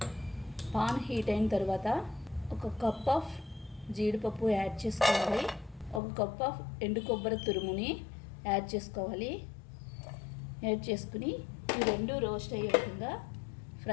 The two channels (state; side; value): drops out; right; at 6.0 s